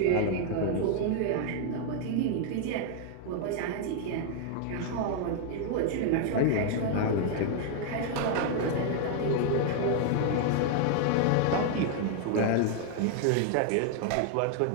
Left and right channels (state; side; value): different; both; correlation 0.00